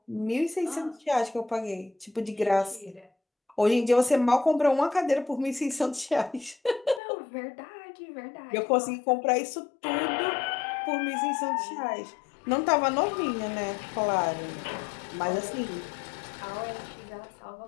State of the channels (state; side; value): drops out; right; at 7.0 s